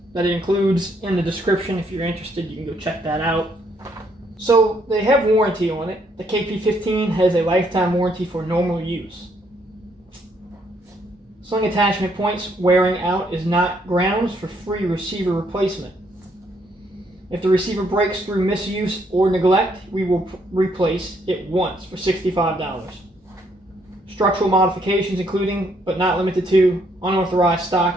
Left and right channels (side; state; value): both; normal; correlation 0.70